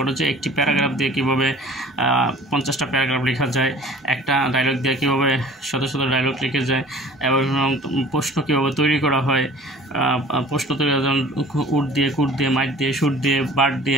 যে একটি প্যারাগ্রাফ দিয়ে কীভাবে 50টা প্যারাগ্রাফ লেখা যায়, একটা ডায়লগ দিয়ে কীভাবে শত ডায়লগ লিখে যায়, এবং প্রশ্ন কীভাবে তৈরি করা হয়। প্রশ্ন তৈরি যেমন উট দিয়ে, কুট দিয়ে, মাইট দিয়ে, শুট দিয়ে,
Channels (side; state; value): both; normal; correlation 0.47